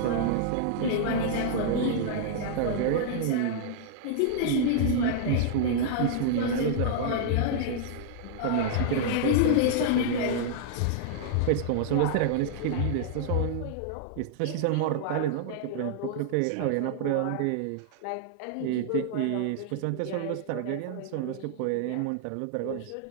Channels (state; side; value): different; both; correlation -0.01